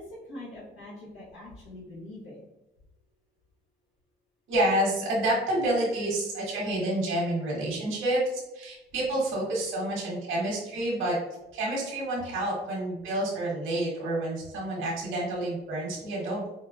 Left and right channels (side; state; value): both; normal; correlation 0.45